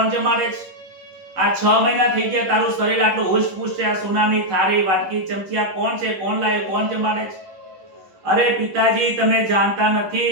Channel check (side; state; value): left; late; 10 ms